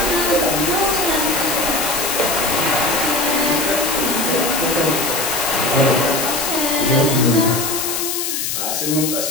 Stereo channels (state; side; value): noise; left; hiss, 2 dB below the sound